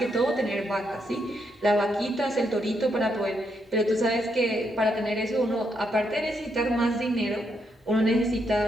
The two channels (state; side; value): normal; both; correlation 0.78